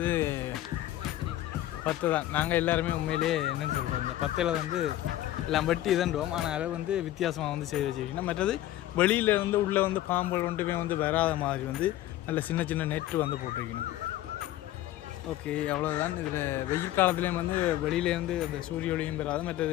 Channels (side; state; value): right; quieter; 14.3 dB